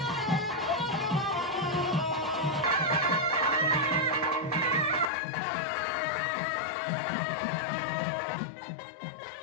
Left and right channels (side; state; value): right; drops out; at 5.1 s